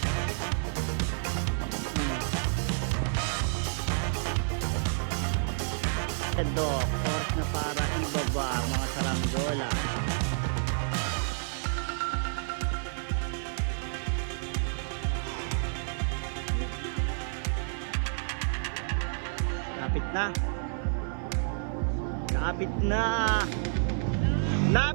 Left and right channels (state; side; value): silent; left; 58 dB below the other